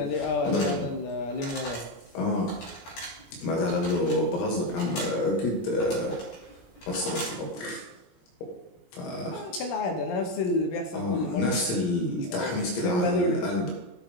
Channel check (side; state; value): right; late; 17 ms